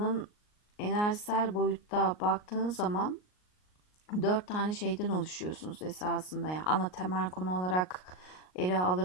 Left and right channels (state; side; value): late; right; 38 ms